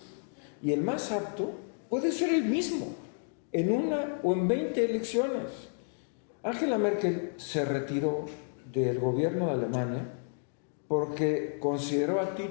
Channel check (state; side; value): silent; right; digital silence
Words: Y el más apto puede ser el mismo en una o en 20 elecciones. Angela Merkel se retiró del gobierno de Alemania porque consideró a